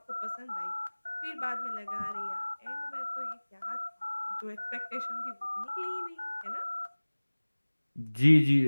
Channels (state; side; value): inverted; both; correlation -1.00